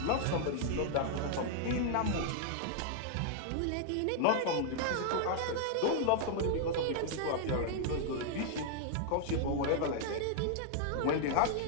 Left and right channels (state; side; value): different; both; correlation -0.01